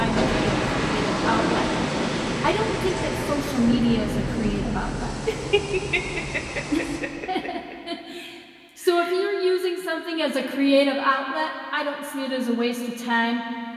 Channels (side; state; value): both; identical; correlation 1.00